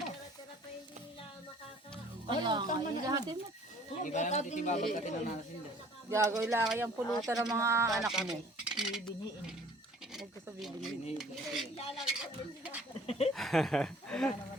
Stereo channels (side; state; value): both; normal; correlation 0.53